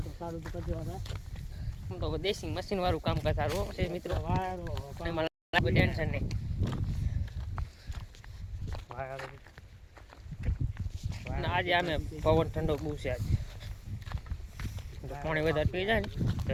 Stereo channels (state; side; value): identical; both; correlation 1.00